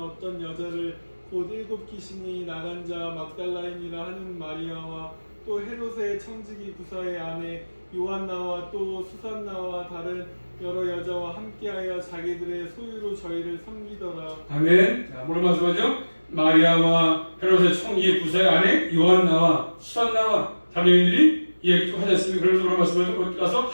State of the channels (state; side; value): inverted; both; correlation -1.00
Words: 여자를 곧 7 귀신이 나간 자 막달라인이라 하는 마리아와 또 헤롯의 청지기 부사의 아내 요한나와 또 수산나와 다른 여러 여자와 함께하여 자기들의 소유로 저희를 섬기더라. 아멘. 자, 뭐를 말씀하죠? 마리아와 헤롯의 청지기 부사의 아내 요한나와 수산나와 다른 여인들이 이야기 좀 하지 않습니까? 그러면서 뭐를 말씀하죠? 거기 가서